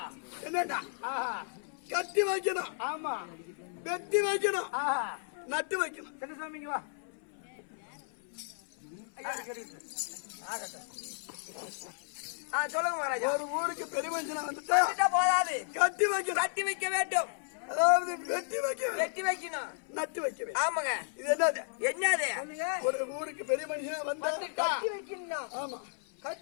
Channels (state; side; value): silent; right; 55 dB below the other